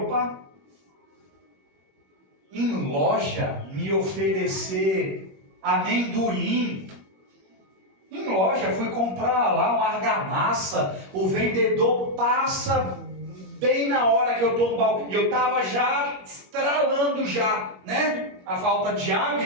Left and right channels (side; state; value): left; late; 21 ms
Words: em loja me oferecer amendoim. Em loja, fui comprar lá uma argamassa, o vendedor passa bem na hora que eu estou no balcão, e eu estava já estralando já, né? A falta de